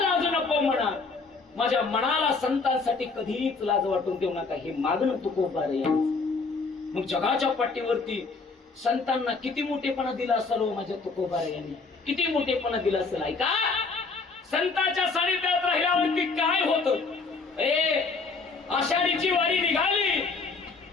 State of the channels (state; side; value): quieter; right; 4.2 dB